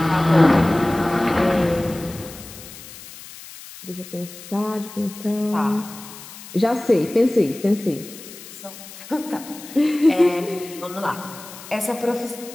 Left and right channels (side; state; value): left; noise; hiss, 16 dB below the sound